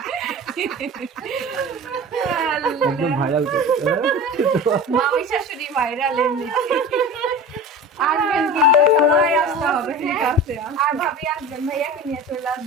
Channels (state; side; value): normal; both; correlation 0.34